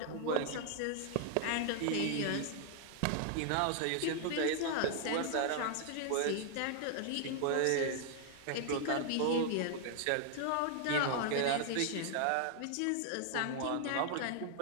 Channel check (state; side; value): different; both; correlation 0.00